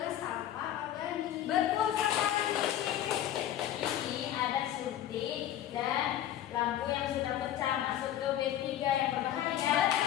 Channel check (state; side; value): quieter; right; 11.7 dB